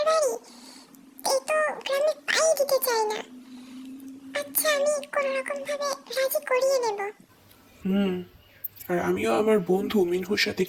বাড়ি, এই তো গ্রামে পাই দিতে চাই না। আচ্ছা, আমি কোনো রকম ভাবে রাজি করিয়ে নেব। আর আমিও আমার বন্ধু মিনহুর সাথে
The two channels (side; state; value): both; identical; correlation 1.00